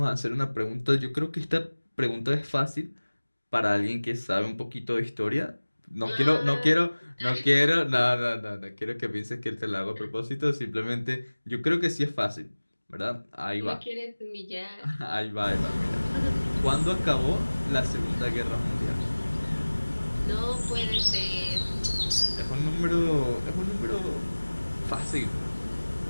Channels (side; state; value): both; inverted; correlation -1.00